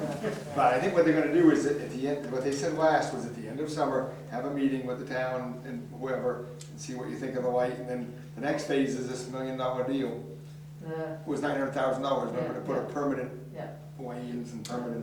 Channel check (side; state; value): both; identical; correlation 1.00